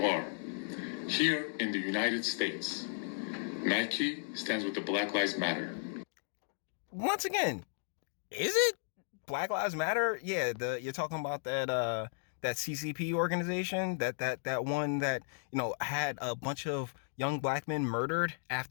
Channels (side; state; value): right; silent; digital silence